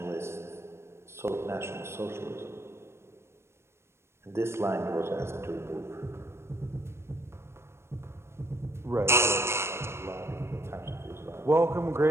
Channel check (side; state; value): left; late; 0.13 ms